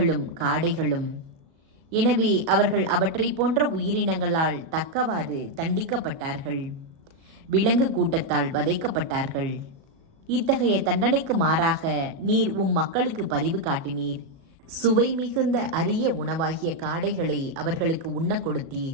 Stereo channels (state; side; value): late; left; 37 ms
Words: காடைகளும். எனவே அவர்கள் அவற்றை போன்ற உயிரினங்களால் தக்கவாறு தண்டிக்கப்பட்டார்கள். விலங்கு கூட்டத்தால் வதைக்கப்பட்டார்கள். இத்தகைய தண்டனைக்கு மாறாக நீர் மக்களுக்கு பரிவு காட்டினீர். சுவை மிகுந்த அரிய உணவாகிய காடைகளை அவர்களுக்கு உண்ண